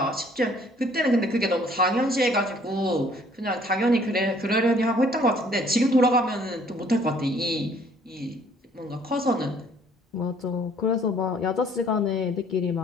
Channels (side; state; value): both; normal; correlation 0.59